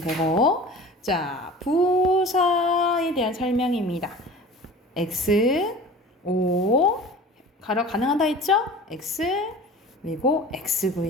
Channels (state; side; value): normal; both; correlation 0.40